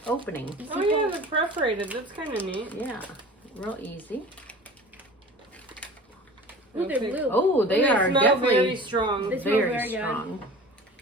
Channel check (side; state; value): both; normal; correlation 0.40